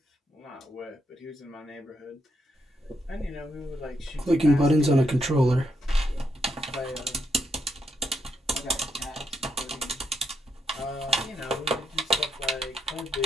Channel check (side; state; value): both; normal; correlation 0.80